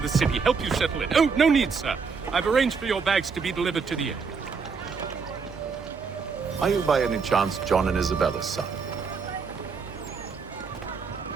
city, help you settle in. Oh, no need, sir. I've arranged for your bags to be delivered to the inn. Are you by any chance John and Isabella's son?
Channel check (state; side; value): quieter; left; 5.3 dB